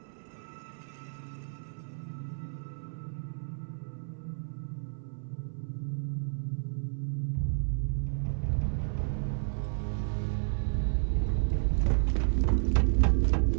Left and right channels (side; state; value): left; silent; 57 dB below the other